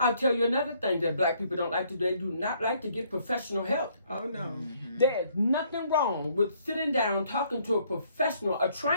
tell you another thing that black people don't like to do. They do not like to get professional help. Oh, no. There's nothing wrong with sitting down, talking to a professional, a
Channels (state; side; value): inverted; both; correlation -0.66